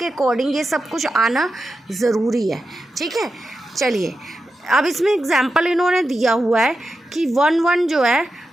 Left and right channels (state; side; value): normal; both; correlation 0.90